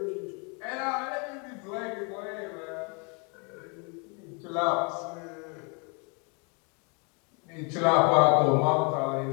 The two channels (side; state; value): right; quieter; 34.4 dB